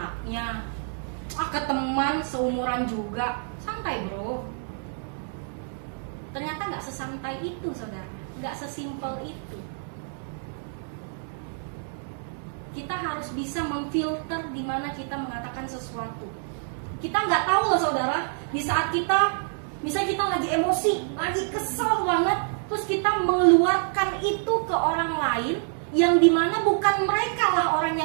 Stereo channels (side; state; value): left; silent; 58 dB below the other